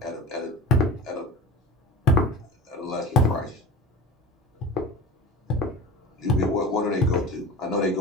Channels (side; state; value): both; normal; correlation 0.34